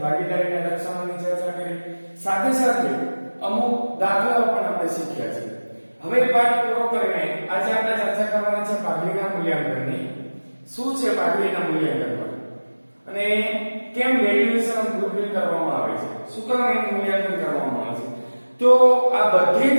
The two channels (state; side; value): inverted; both; correlation -1.00